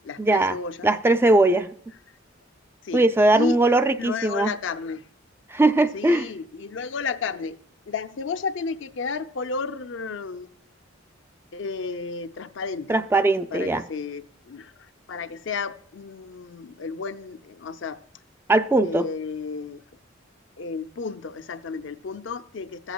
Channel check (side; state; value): both; normal; correlation 0.62